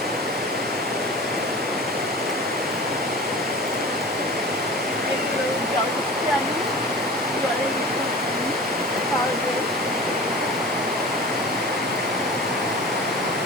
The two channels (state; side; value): normal; both; correlation 0.37